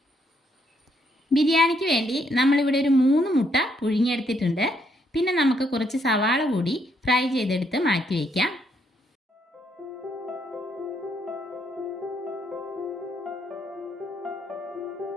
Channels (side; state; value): both; normal; correlation 0.73